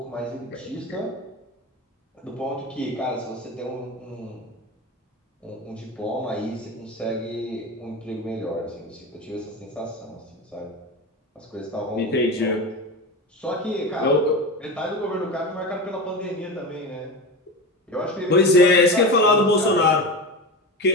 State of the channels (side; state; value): both; normal; correlation 0.24